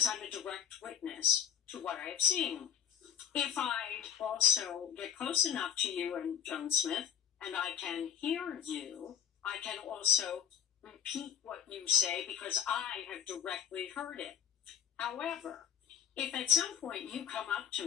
I'm a direct witness to what I have seen. If I also get close enough to you and Joan Smith, and I can hear you, I can also repeat what you say because I have directly heard it. However, if at some point you come up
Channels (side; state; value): right; quieter; 8.8 dB